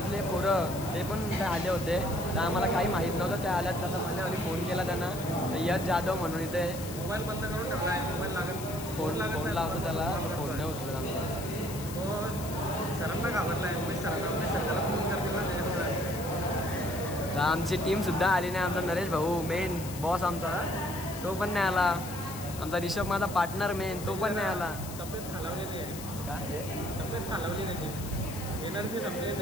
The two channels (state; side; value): noise; left; hiss, 12 dB below the sound